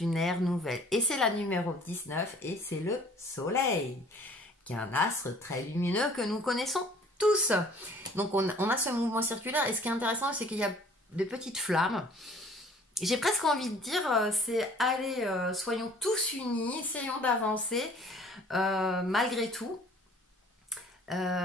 ère nouvelle. Et c'est la numéro 19 et c'est le soleil, qui est un astre très lumineux que nous connaissons tous. Donc on a ce mouvement circulaire et ce qui est intéressant, c'est qu'il y a de petites flammes. J'ai presque envie de dire, c'est allez, soyons tous unis, essayons d'avancer malgré tout.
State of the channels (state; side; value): normal; both; correlation 0.53